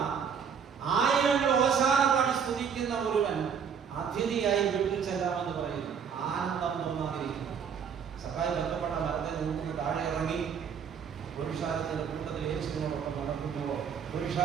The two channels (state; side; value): quieter; left; 7.1 dB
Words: ആയിരങ്ങൾ ഓശാന പാടി സ്തുതിക്കുന്ന ഒരുവൻ അതിഥിയായി വീട്ടിൽ ചെല്ലാമെന്ന് പറയുന്നു. ആനന്ദം തോന്നാതിരിക്കുന്നു. സഖായി ബന്ധപ്പെട്ട മരത്തെ നിന്ന് താഴെ ഇറങ്ങി പുരുഷാരത്തിന്റെ കൂട്ടത്തിൽ യേശുവിനോടൊപ്പം നടക്കുമ്പോൾ